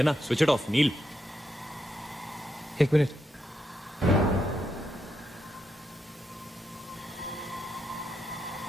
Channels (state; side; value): normal; both; correlation 0.83